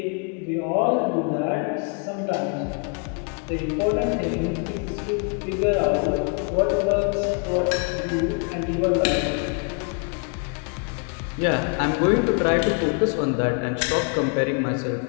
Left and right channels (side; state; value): right; quieter; 39.0 dB